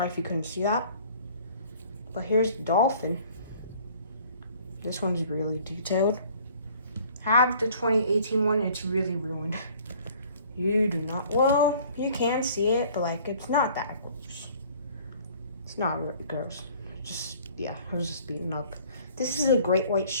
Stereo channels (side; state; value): both; inverted; correlation -0.53